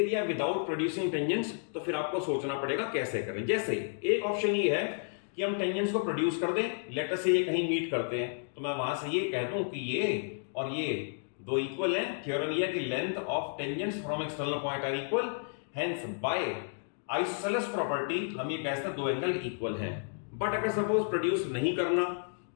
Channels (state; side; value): silent; right; digital silence